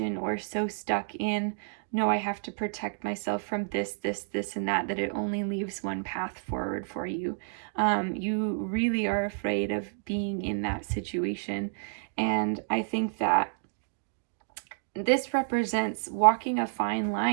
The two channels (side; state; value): left; silent; digital silence